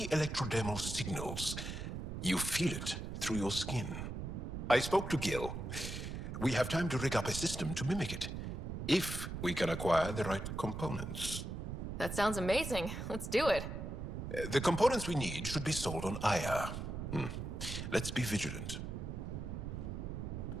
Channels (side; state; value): right; noise; rumble, 5 dB below the sound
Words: electrodermal signals. You feel it through your skin. I spoke to Gil. We have time to rig up a system to mimic it, if we can acquire the right components. That sounds amazing. Let's do it. The components we need should be sold on Aya. Let's be vigilant.